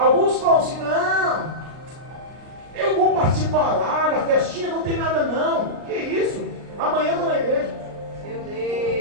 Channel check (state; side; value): late; left; 39 ms